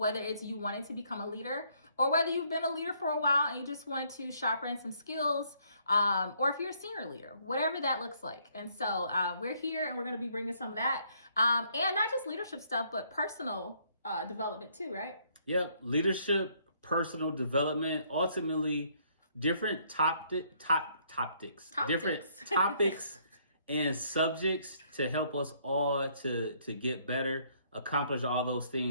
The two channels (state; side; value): inverted; both; correlation -0.67